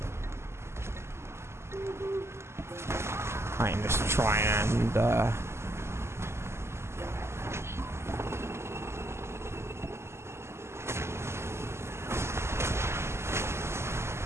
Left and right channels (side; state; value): left; late; 0.13 ms